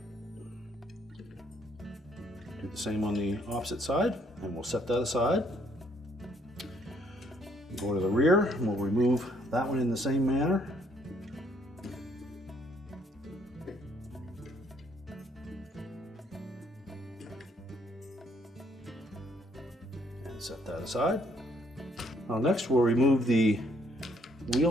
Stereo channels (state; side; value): normal; both; correlation 0.67